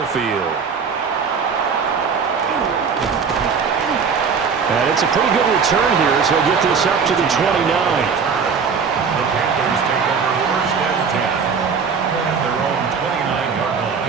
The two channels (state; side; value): quieter; left; 5.9 dB